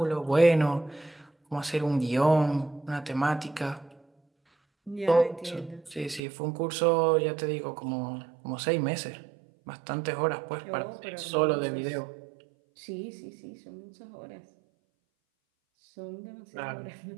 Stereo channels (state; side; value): drops out; left; at 6.2 s